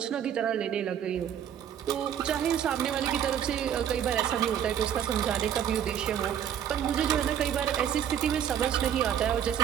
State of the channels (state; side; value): quieter; left; 9.3 dB